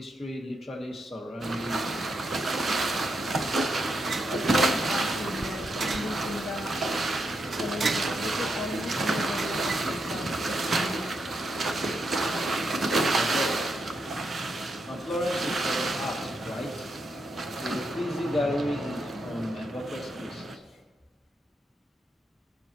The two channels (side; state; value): both; normal; correlation 0.82